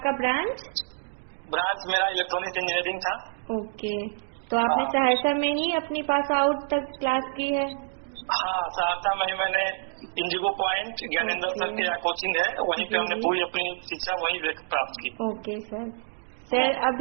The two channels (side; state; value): left; silent; digital silence